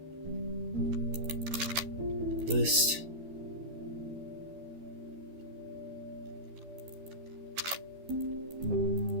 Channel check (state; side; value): late; left; 12 ms